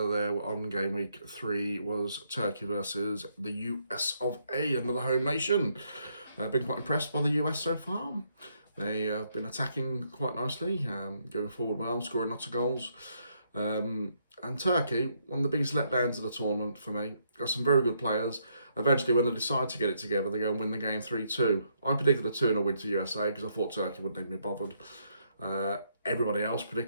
there on game week 3 was Turkey versus the US of A, another home nation. I've been quite impressed by the US so far. They have been attacking quite nicely, going forward well, scoring lots of goals. And Turkey, one of the biggest letdowns of the tournament for me. Got some very good players. Eventually, when they decide to get it together, they go and win the game 3-2. I predicted a 2-0 win to USA because I thought Turkey wouldn't even be bothered. Everybody else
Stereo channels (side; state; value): both; inverted; correlation -0.74